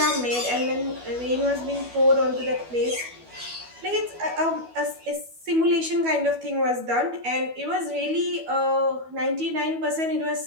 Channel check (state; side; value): late; left; 12 ms